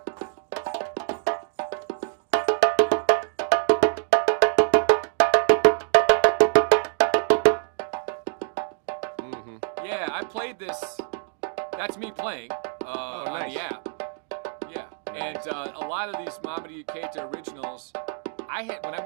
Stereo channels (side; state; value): left; silent; digital silence